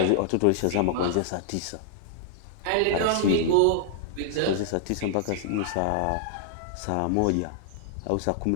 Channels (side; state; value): both; different; correlation -0.01